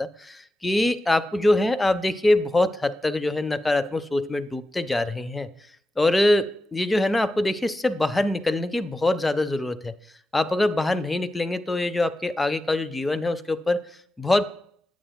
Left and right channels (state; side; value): normal; both; correlation 0.92